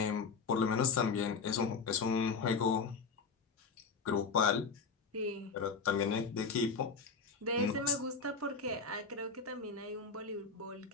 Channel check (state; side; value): quieter; right; 5.0 dB